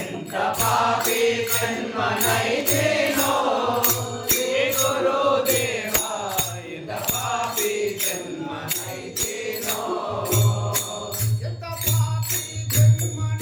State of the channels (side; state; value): both; identical; correlation 1.00